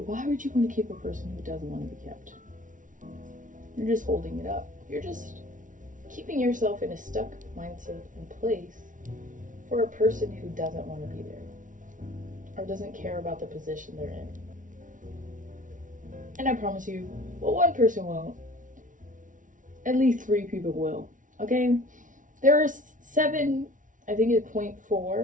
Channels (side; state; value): left; late; 0.38 ms